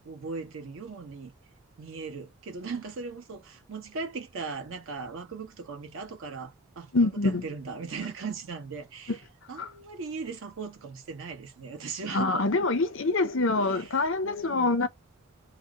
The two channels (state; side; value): normal; both; correlation 0.12